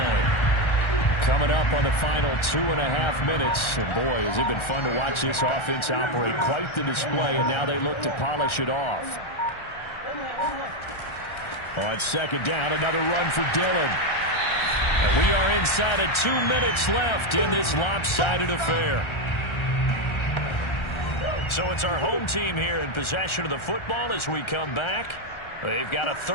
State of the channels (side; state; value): right; late; 1.3 ms